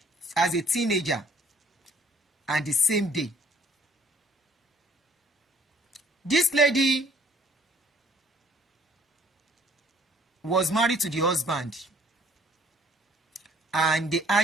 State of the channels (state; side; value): normal; both; correlation 0.60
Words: teenager. And the same day. This lady was married to the husband. And they